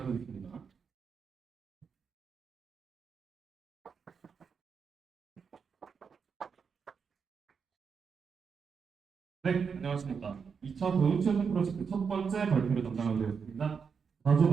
네, 안녕하십니까. 2차 교육체증 프로젝트 첫 번째 발표를 담당하게 되었습니다. 다조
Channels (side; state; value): left; quieter; 6.1 dB